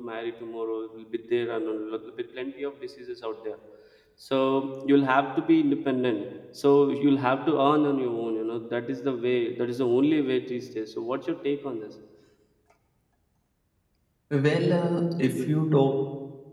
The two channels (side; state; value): both; identical; correlation 1.00